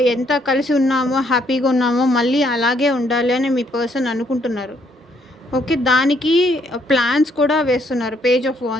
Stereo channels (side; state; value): both; normal; correlation 0.69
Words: ఎంత కలిసి ఉన్నామో హ్యాపీగా ఉన్నామో మళ్ళీ అలాగే ఉండాలి అని మీ పర్సన్ అనుకుంటున్నారు. ఓకే, దానికి ప్లాన్స్ కూడా వేస్తున్నారు. పేజ్ ఆఫ్